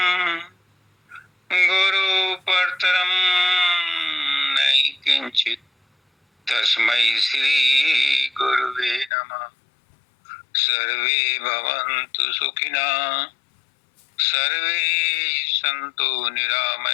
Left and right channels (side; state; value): right; drops out; at 9.1 s